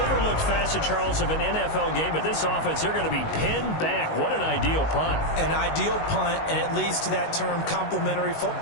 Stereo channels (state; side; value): late; right; 19 ms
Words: overlooked facet, Charles, of an NFL game. But this offense, they're going to be pinned back. What an ideal punt. An ideal punt, and it leads to that term complementary